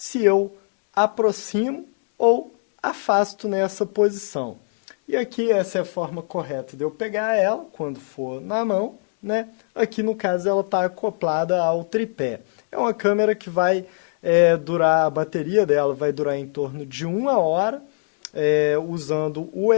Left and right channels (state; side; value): silent; right; digital silence